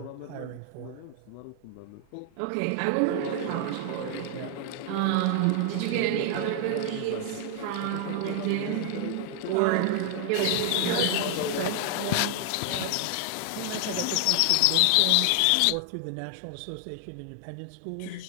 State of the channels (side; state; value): both; different; correlation 0.00